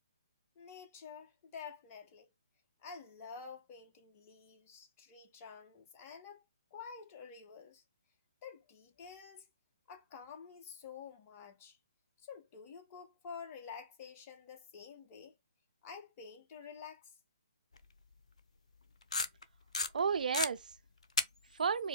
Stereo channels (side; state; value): both; inverted; correlation -0.47